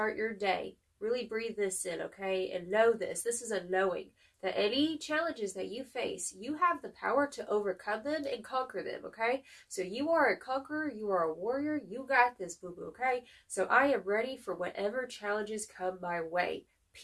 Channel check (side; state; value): both; identical; correlation 1.00